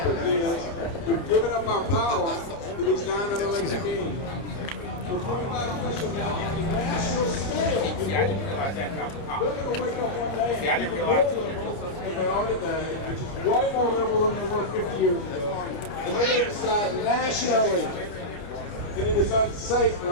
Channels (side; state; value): right; late; 29 ms